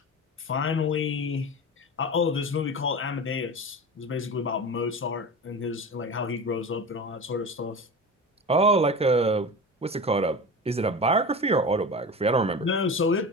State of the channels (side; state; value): both; normal; correlation 0.29